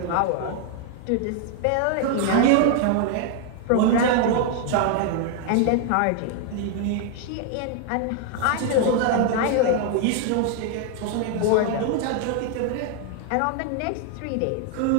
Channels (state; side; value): different; both; correlation 0.00